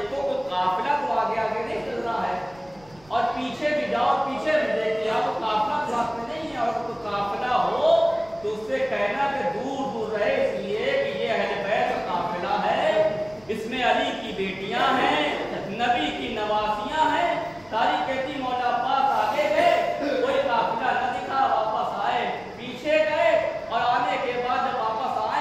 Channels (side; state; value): right; noise; rumble, 27 dB below the sound